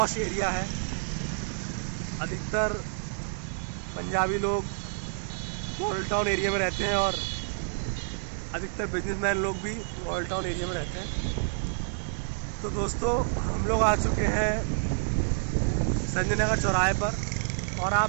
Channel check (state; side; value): silent; left; digital silence